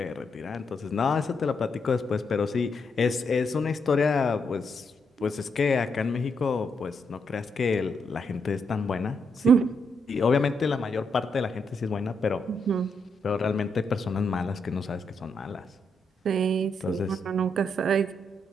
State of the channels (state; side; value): normal; both; correlation 0.79